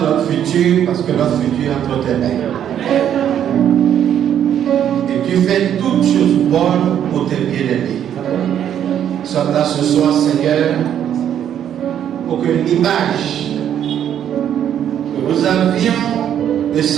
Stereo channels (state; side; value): quieter; left; 9.8 dB